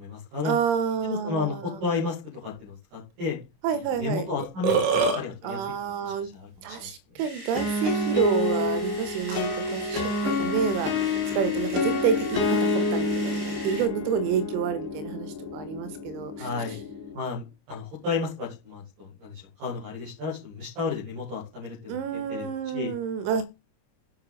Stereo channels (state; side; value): late; left; 26 ms